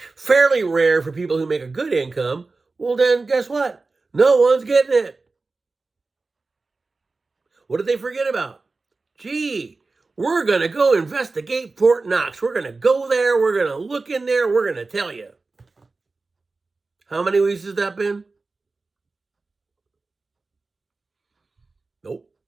fairly rare for people who make a good income, well then guess what? No one's getting it. What did they forget about? Gee, we're going to go investigate Fort Knox. We're going to go there. We're going to look in there. We're going to tell you. How many weeks has that been? Nope.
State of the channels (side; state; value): left; quieter; 3.7 dB